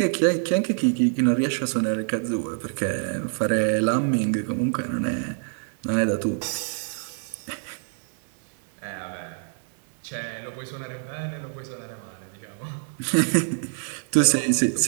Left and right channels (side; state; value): left; silent; 61 dB below the other